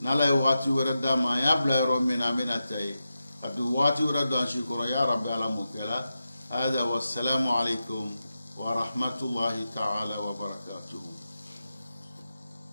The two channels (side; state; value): both; inverted; correlation -0.90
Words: نلا يواتي وردما يا بلا رومين أمي نتاي كبواتي وردان شكرا يا رب العالمين كلا هذا والسلام عليكم ورحمة الله تعالى وبركاته.